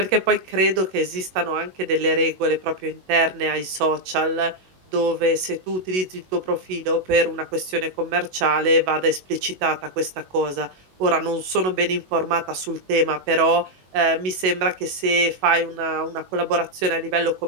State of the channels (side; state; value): left; late; 21 ms